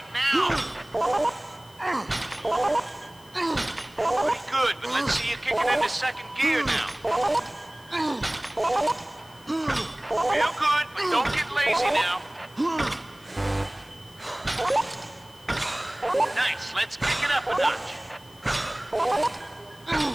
now. Pretty good, but let's see you kick it into second gear now. Real good, but don't get lazy now. Nice, let's kick it up a notch.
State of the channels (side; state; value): left; noise; hiss, 25 dB below the sound